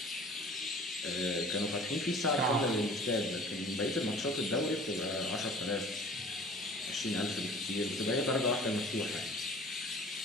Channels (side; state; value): both; normal; correlation 0.46